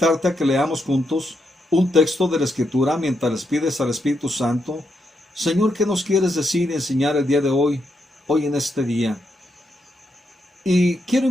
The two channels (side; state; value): both; normal; correlation 0.81